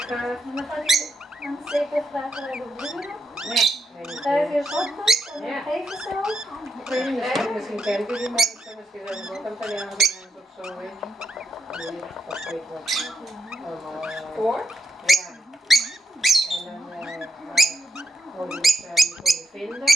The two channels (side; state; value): both; normal; correlation 0.81